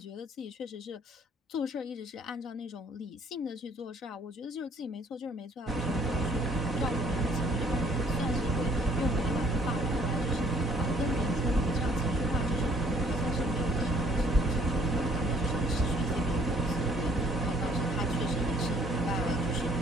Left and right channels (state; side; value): normal; both; correlation 0.61